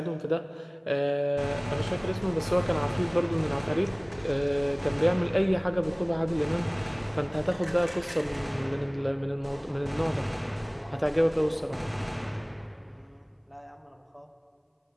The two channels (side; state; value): both; identical; correlation 1.00